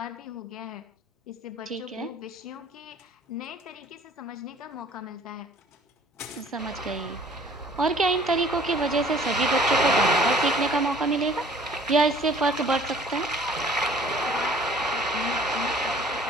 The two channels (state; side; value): normal; both; correlation 0.52